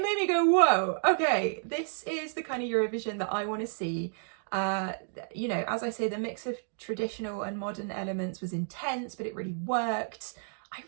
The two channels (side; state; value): left; silent; digital silence